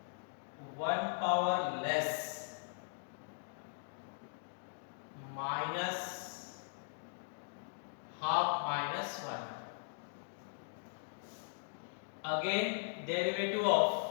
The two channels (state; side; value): silent; right; digital silence